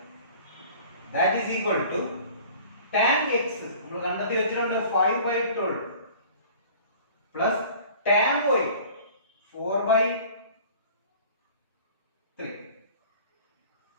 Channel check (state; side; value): inverted; both; correlation -0.47